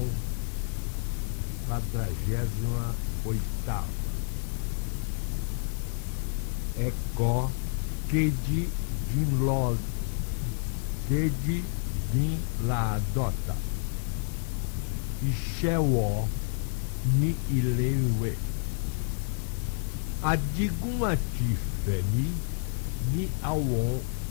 48ª. Eko keji din la dota. Ìṣẹ́wọ̀ ní ilé ìwé. Adigun àti Fẹ̀mí ní àwọn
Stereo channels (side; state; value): right; silent; 58 dB below the other